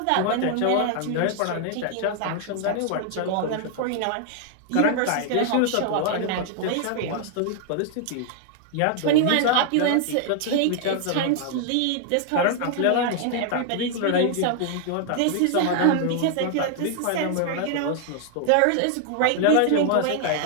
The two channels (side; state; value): both; different; correlation 0.00